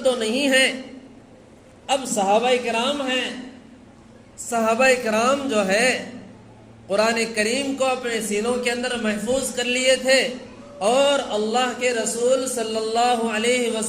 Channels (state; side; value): identical; both; correlation 1.00